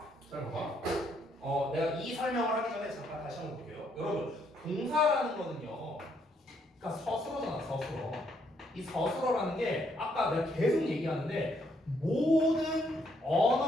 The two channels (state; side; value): normal; both; correlation 0.72